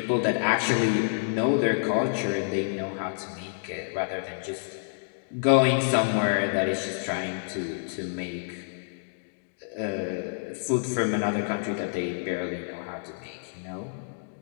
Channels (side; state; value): right; silent; digital silence